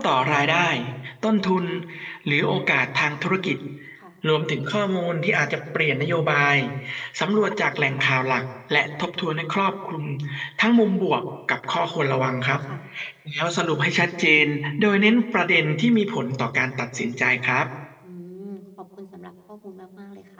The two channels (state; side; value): identical; both; correlation 1.00